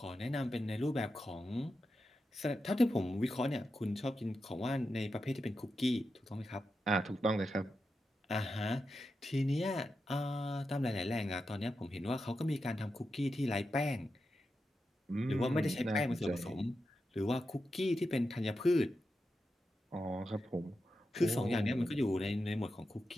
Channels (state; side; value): normal; both; correlation 0.89